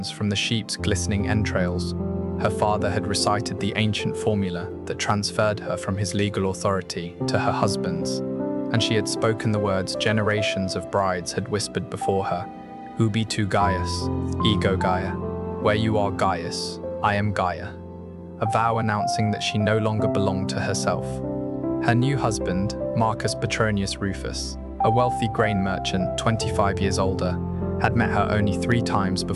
from the sheep's glistening entrails. Her father had recited the ancient formula that transferred her from his legal authority to her husband's, and she had spoken the words generations of brides had whispered before her: Ubi tu Gaius, ego Gaia. Where you are Gaius, I am Gaia. A vow announcing that she no longer belonged to herself. Her new husband, Marcus Petronius Rufus, a wealthy grain merchant 25 years older, had met her only 3 times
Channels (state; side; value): identical; both; correlation 1.00